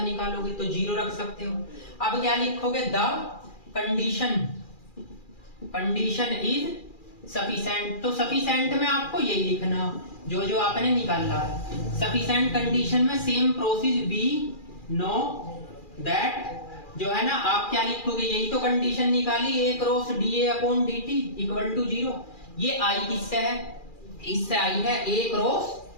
निकालोगे तो जीरो रख सकते हो। अब क्या लिखोगे, द कंडीशन इज सफिशिएंट, तो सफिशिएंट में आपको यही लिखना जो आपने निकाला है, सफिशिएंट कंडीशन में same process be know that, जो है ना, आप क्या लिखोगे, यही तो कंडीशन निकाली, a cross dA upon dt equal to zero, ये i किससे है, इससे आई है, a cross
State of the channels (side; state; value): right; late; 2.4 ms